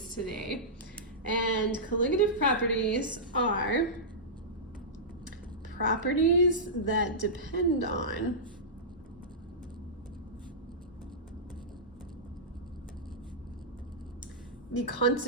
today. And colligative properties are properties that depend on the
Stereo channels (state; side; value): normal; both; correlation -0.15